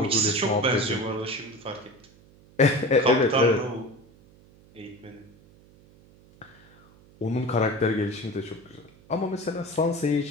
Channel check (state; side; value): noise; right; hum, 26 dB below the sound